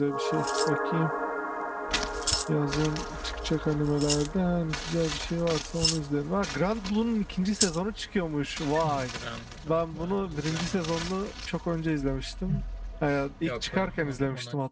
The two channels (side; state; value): both; identical; correlation 1.00